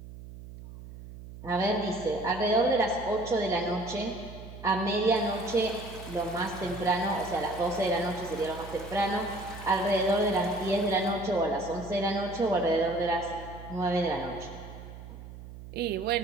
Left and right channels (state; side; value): noise; right; hum, 14 dB below the sound